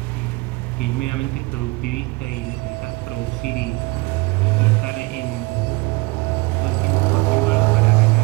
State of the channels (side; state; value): left; quieter; 24.4 dB